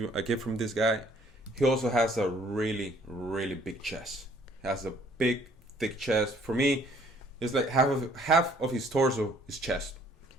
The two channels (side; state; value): both; normal; correlation 0.60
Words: a gift from this guy. He also has a really big chest. He has a big, thick chest. For me, it's like half of his torso is chest.